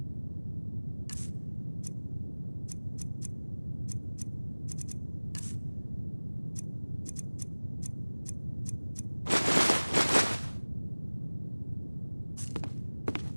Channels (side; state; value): both; inverted; correlation -1.00